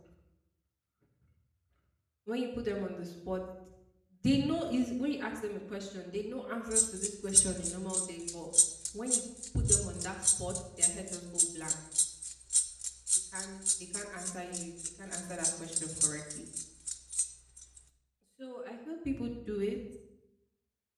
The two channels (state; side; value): identical; both; correlation 1.00